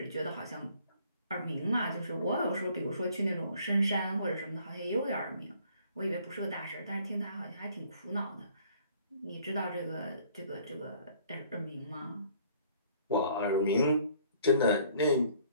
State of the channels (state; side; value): inverted; both; correlation -0.59